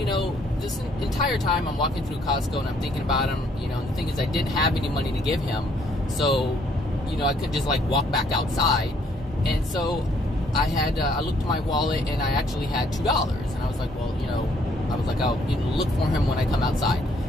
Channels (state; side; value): normal; both; correlation 0.66